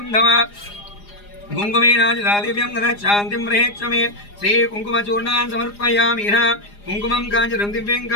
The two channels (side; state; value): right; late; 4.9 ms